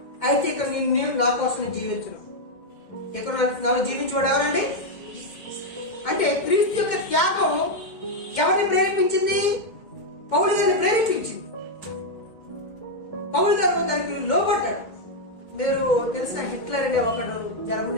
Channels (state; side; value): late; right; 2.1 ms